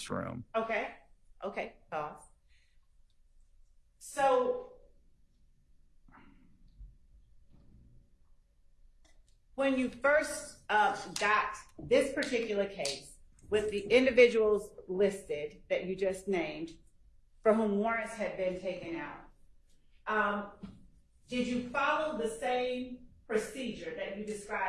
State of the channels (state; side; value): identical; both; correlation 1.00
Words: room. Okay. Okay. Pause. So, when you first got this particular case with the individuals listed that you just named, for whom warrants had been taken out, did you follow the same procedure that you